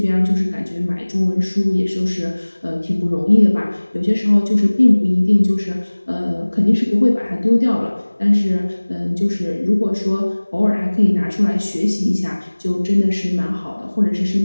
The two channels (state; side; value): inverted; both; correlation -1.00